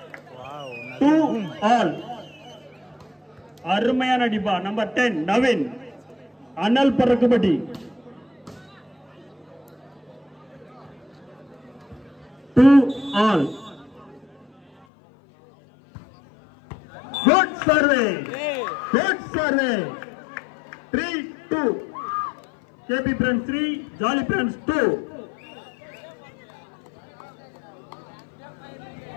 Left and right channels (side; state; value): right; drops out; at 14.9 s